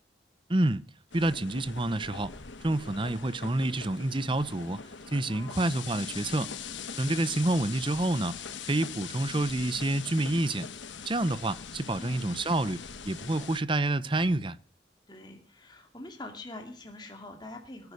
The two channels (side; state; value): both; normal; correlation 0.74